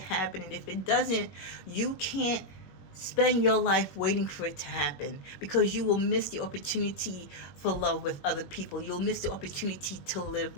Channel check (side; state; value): right; late; 21 ms